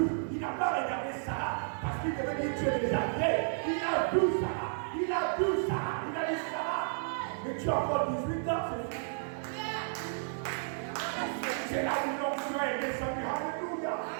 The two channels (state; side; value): silent; left; digital silence